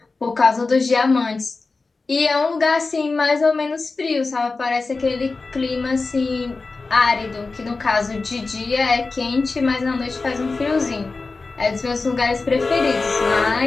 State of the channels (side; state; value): right; quieter; 3.9 dB